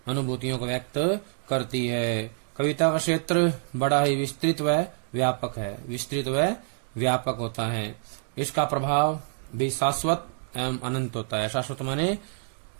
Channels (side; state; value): left; silent; digital silence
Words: अनुभूतियों को व्यक्त करती है। कविता का क्षेत्र बड़ा ही विस्तृत व व्यापक है, विस्तृत व व्यापक होता है। इसका प्रभाव भी शाश्वत एवं अनंत होता है। शाश्वत माने